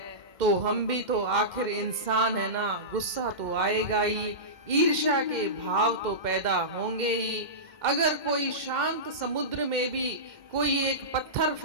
तो हम भी तो आखिर इंसान है ना, गुस्सा तो आएगा ही, ईर्ष्या के भाव तो पैदा होंगे ही। अगर कोई शांत समुद्र में भी कोई एक पत्थर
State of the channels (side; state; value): left; late; 2.1 ms